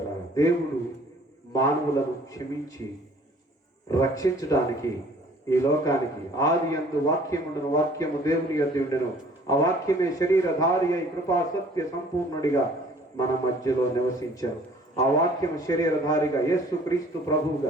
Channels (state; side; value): normal; both; correlation 0.54